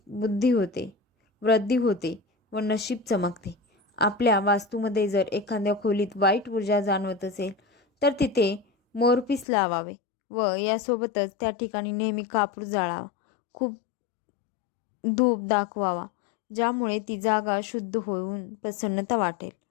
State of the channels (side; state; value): right; drops out; at 9.5 s